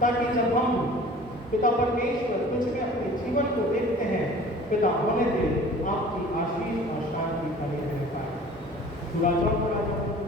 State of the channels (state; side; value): normal; both; correlation 0.45